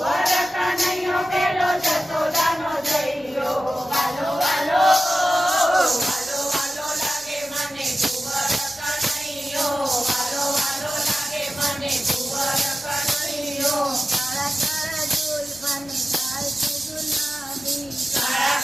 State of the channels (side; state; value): left; noise; hum, 30 dB below the sound